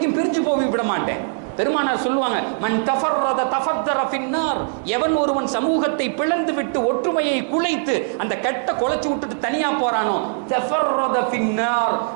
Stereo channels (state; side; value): silent; left; digital silence